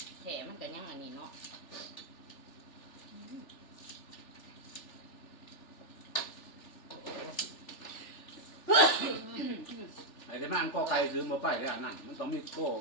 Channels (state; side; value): late; right; 3.4 ms